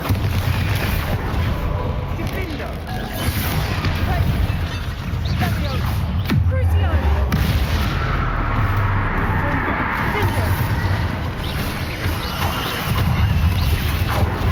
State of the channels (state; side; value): identical; both; correlation 1.00